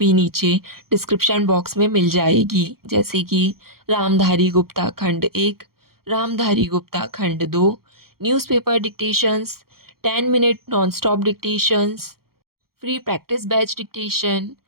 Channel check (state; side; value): late; left; 0.94 ms